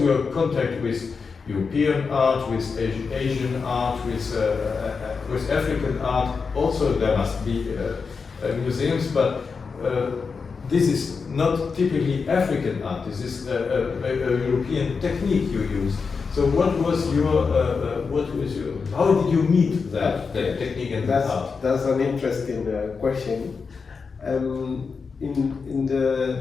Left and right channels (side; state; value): right; quieter; 5.1 dB